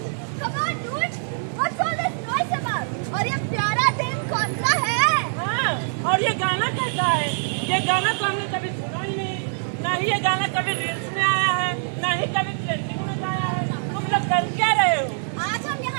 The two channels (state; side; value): silent; left; digital silence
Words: Come on, dude. What's all this noise about? और ये प्यारा दिन कौन सा है? हाँ, और ये गाना कैसा है? ये गाना तो हमने कभी सुना ही नहीं, ना ही ये गाना कभी रील्स में आया है, ना ही कभी ट्रेंडिंग में आया है। तुम लोग कर क्या रहे हो? आज हम